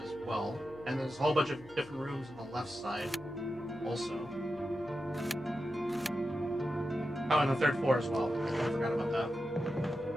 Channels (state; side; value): noise; left; hum, 20 dB below the sound